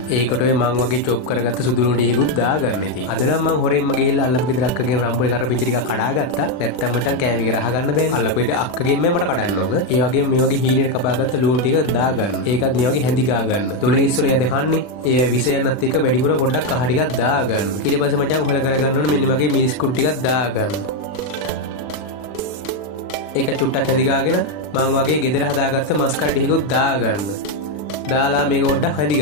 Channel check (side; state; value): right; late; 40 ms